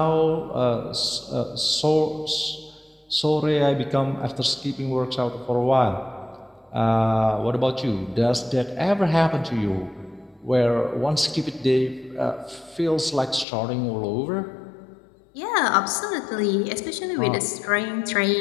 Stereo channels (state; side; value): drops out; right; at 13.5 s